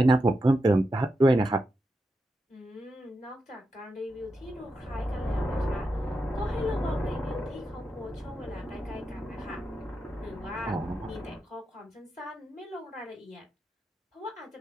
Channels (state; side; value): normal; both; correlation 0.87